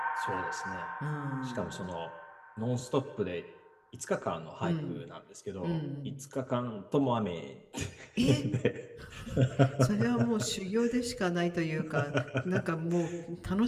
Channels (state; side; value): identical; both; correlation 1.00